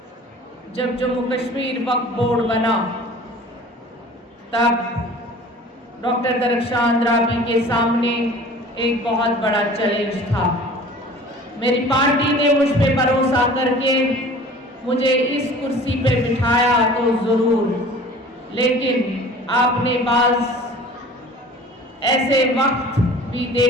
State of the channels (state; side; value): normal; both; correlation 0.44